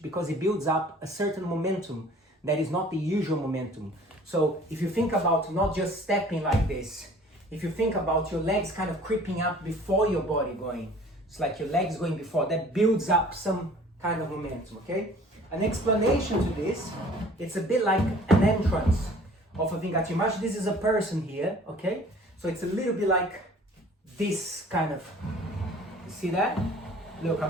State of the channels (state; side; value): normal; both; correlation 0.50